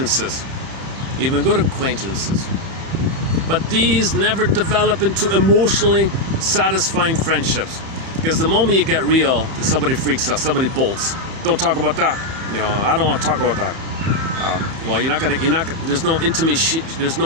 even good acquaintances, but these never develop into emotionally satisfying friendships. Because the moment you get real, somebody freaks out, somebody bolts. Don't talk about that. You know, I don't want to talk about that. Well, there's no intimacy, there's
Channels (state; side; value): late; left; 31 ms